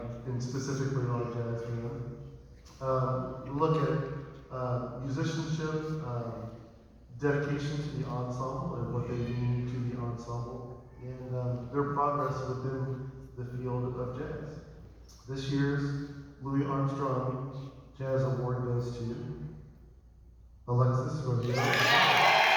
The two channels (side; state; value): both; identical; correlation 1.00